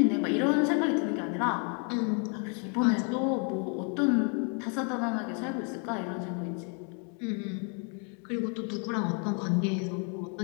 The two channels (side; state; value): right; quieter; 38.8 dB